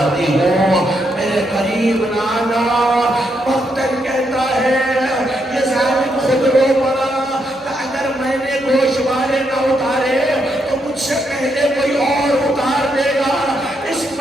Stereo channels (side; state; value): both; normal; correlation 0.79